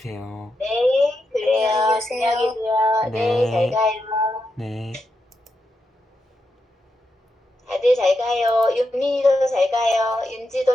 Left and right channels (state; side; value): normal; both; correlation 0.85